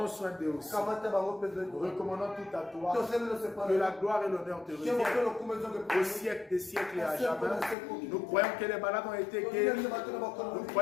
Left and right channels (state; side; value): drops out; right; at 7.8 s